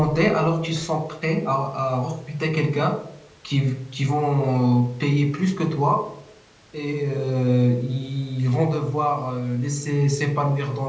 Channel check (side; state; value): both; identical; correlation 1.00